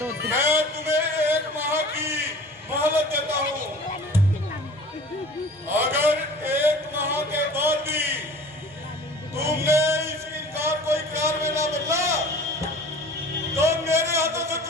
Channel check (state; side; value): normal; both; correlation 0.43